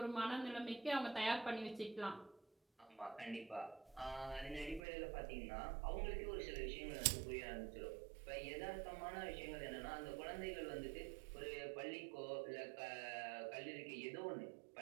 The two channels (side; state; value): left; drops out; at 4.8 s